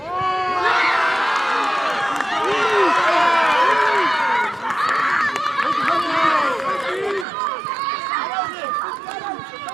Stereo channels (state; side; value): drops out; left; at 7.2 s